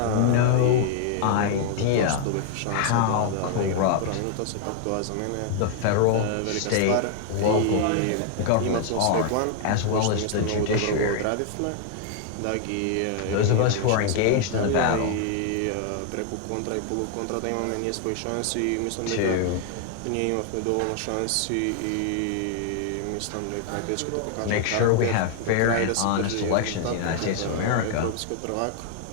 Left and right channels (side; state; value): both; different; correlation 0.00